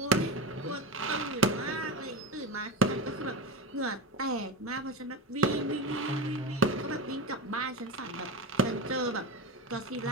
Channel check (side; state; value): both; normal; correlation 0.21